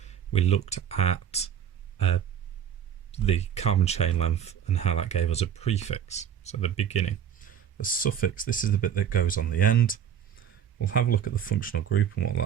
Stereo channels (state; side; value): quieter; left; 8.8 dB